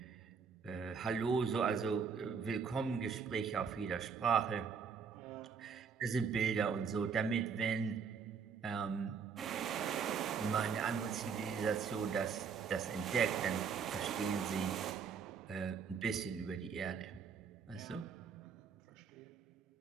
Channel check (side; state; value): left; quieter; 6.2 dB